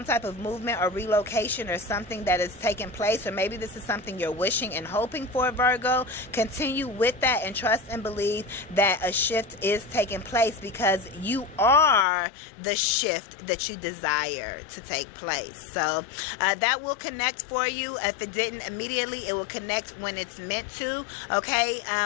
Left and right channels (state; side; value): drops out; right; at 12.1 s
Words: type of movement or relocation or something that is taking place, or maybe this is something you're wishing and hoping for, Virgo. Continue with that and trust and believe that a shift is taking place, because you are the shift that you desire to take place. So that will connect for you. If it didn't immediately, it will connect when it's meant to, okay?